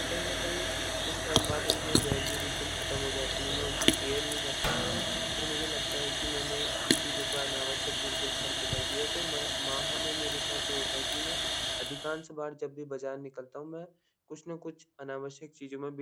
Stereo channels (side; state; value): both; identical; correlation 1.00